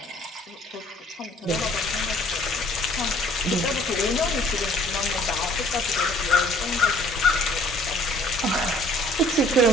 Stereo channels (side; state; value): both; normal; correlation 0.57